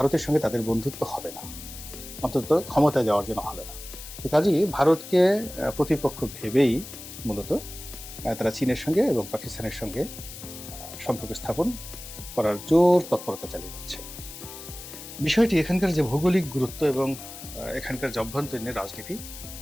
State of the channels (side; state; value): left; noise; hiss, 13 dB below the sound